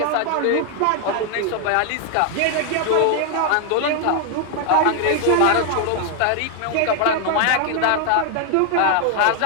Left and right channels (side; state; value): both; different; correlation 0.00